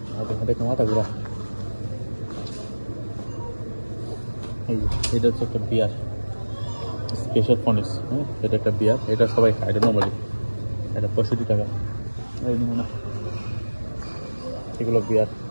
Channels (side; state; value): both; inverted; correlation -1.00